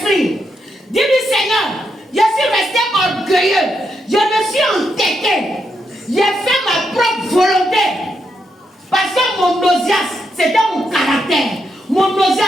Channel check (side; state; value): both; normal; correlation 0.81